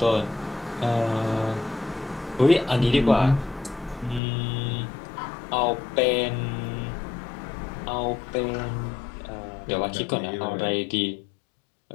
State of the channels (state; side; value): drops out; right; at 4.2 s